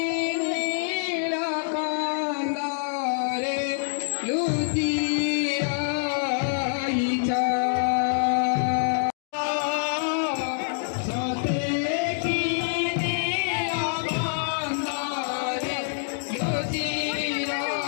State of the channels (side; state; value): right; silent; digital silence